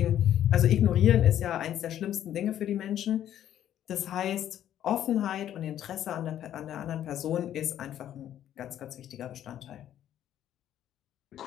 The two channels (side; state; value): right; quieter; 11.2 dB